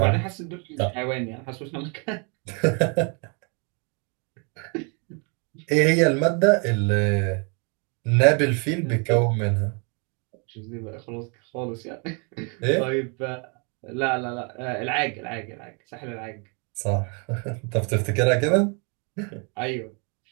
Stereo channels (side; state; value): left; quieter; 35.5 dB